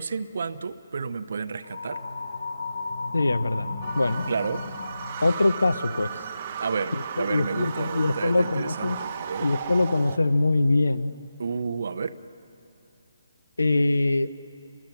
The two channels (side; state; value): both; inverted; correlation -0.92